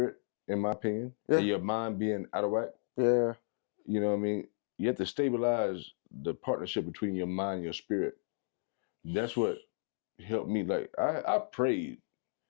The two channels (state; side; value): silent; right; digital silence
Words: in my opinion, and your mind being out of whack. Yeah. You know what I mean? You have to stabilize the partnership between your mind and your spirit. That's what helped me. Like, I prayed